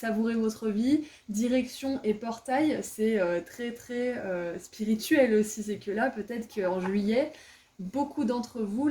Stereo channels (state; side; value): identical; both; correlation 1.00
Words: votre vie, direction et portail, c'est très spirituel aussi. C'est que là, peut-être qu'en juillet, beaucoup d'entre vous,